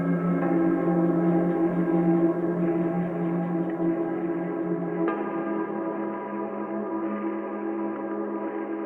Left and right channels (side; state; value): both; identical; correlation 1.00